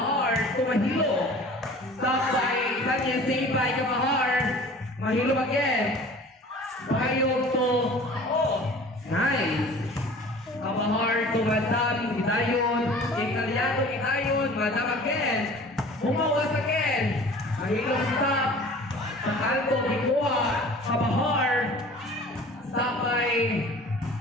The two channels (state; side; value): normal; both; correlation 0.45